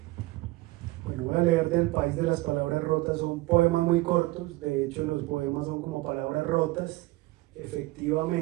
Bueno, voy a leer del País de las Palabras Rotas. Son poemas muy cortos, de hecho los poemas son como palabras rotas,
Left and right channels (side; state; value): left; quieter; 19.7 dB